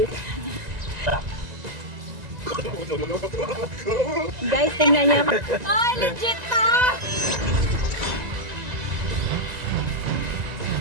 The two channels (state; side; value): late; left; 1.9 ms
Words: Guys, tingnan niyo. Ay, legit to!